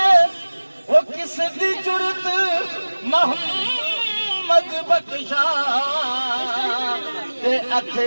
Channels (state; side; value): inverted; both; correlation -1.00